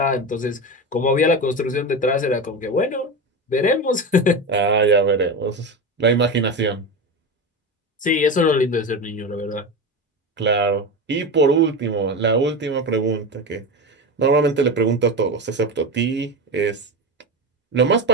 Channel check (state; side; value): normal; both; correlation 0.21